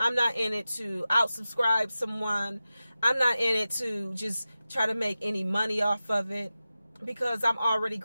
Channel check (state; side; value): inverted; both; correlation -0.94